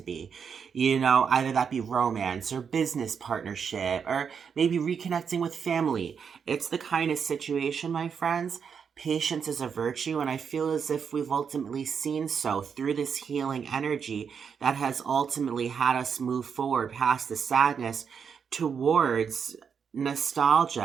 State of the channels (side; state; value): left; quieter; 6.7 dB